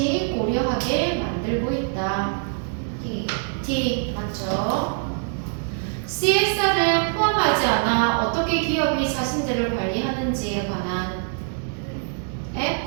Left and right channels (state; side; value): silent; left; 63 dB below the other